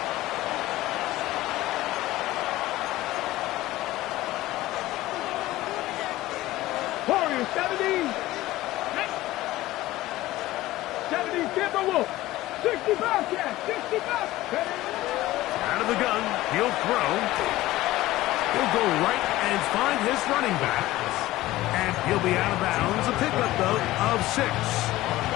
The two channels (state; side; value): quieter; right; 16.8 dB